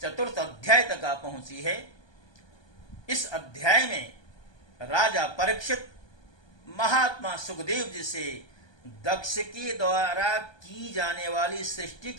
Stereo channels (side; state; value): right; late; 1.2 ms